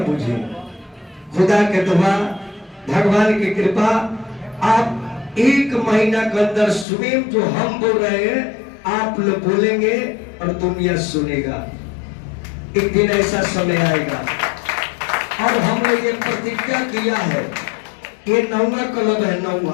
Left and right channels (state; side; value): drops out; right; at 6.9 s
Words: बुझे। खुदा के दुआ, भगवान की कृपा, आप 1 महीना के अंदर स्वयं जो हम बोल रहे हैं आप लोग बोलेंगे और दुनिया सुनेगा। एक दिन ऐसा समय आएगा। और हमने ये प्रतिज्ञा किया है, ये 9वां क्लब है,